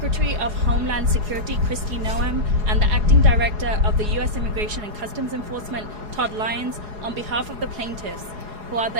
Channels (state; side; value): late; left; 4.8 ms